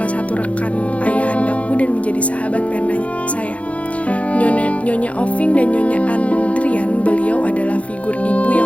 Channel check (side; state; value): right; late; 0.064 ms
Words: satu rekan ayahandaku dan menjadi sahabat pena saya. Nyonya Oving dan Nyonya Andrian, beliau adalah figur ibu